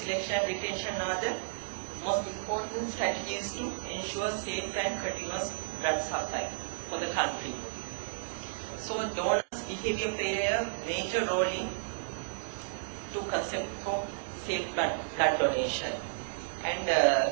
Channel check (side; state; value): left; silent; digital silence